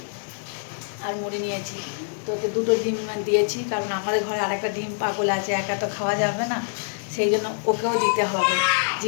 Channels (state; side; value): silent; right; digital silence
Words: আর মুড়ি নিয়েছি। তোকে দুটো ডিম দিয়েছি, কারণ আমাদের ঘরে আরেকটা ডিম পাগল আছে, একা তো খাওয়া যাবে না, সেই জন্য ওকেও দিতে হবে।